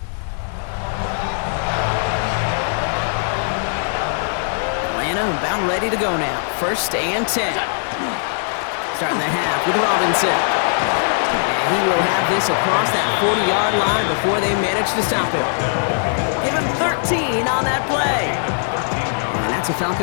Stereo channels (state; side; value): silent; right; 66 dB below the other